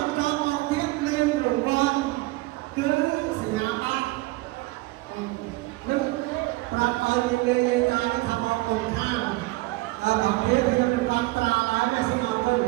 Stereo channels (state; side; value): quieter; left; 21.0 dB